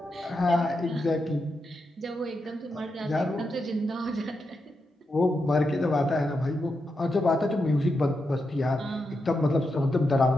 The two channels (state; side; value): normal; both; correlation 0.86